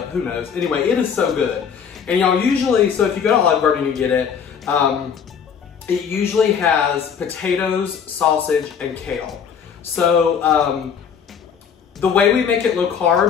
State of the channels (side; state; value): right; quieter; 7.2 dB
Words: who knows. Anyway, it is so good. And y'all usually, so if you go to Oloove Garden and you get it, it usually has potatoes, sausage, and kale. So, the way we make it low